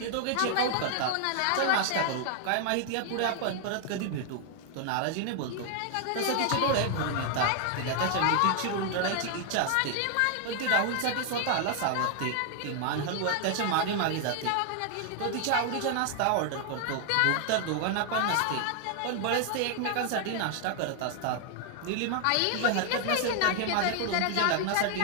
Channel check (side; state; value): both; different; correlation 0.00